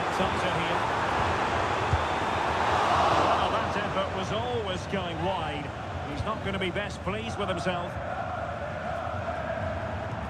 tighter here. Was always going wide. He's not going to be best pleased with himself.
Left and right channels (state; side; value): identical; both; correlation 1.00